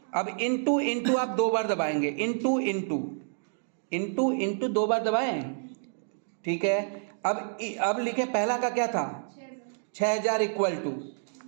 अब इनटू इनटू आप 2 बार दबाएंगे, इनटू इनटू इनटू इनटू 2 बार दबाएं, ठीक है। अब लिखे पहला का क्या था? 6,000 इक्वल टू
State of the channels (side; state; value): left; silent; digital silence